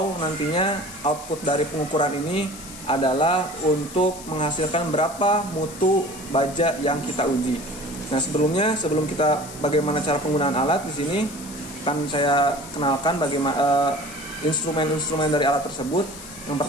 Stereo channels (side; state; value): left; noise; hiss, 15 dB below the sound